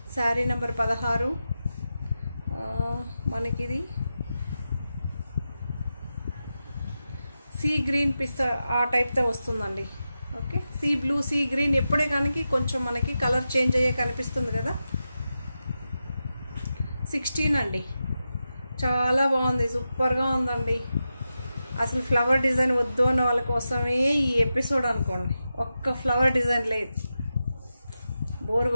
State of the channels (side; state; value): both; inverted; correlation -0.90